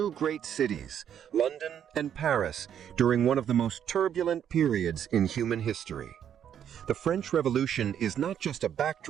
great cities, London and Paris, during one of the most turbulent periods in human history. The French Revolution is not just a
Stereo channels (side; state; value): left; quieter; 9.3 dB